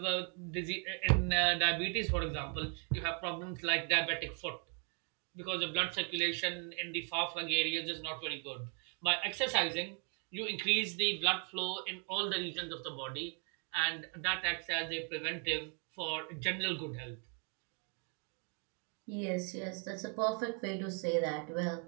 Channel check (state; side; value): quieter; left; 39.7 dB